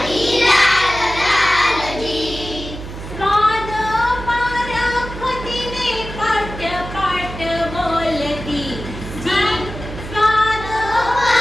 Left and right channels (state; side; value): noise; right; hum, 10 dB below the sound